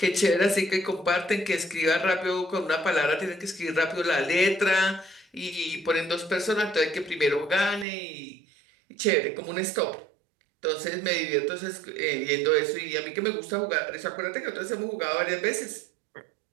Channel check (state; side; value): drops out; left; at 7.9 s